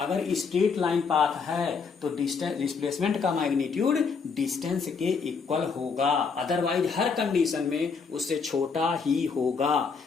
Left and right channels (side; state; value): right; quieter; 5.3 dB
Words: स्ट्रेट लाइन पाथ है तो डिस्प्लेसमेंट का मैग्नीट्यूड डिस्टेंस के इक्वल होगा, अदरवाइज हर कंडीशन में उससे छोटा ही होगा,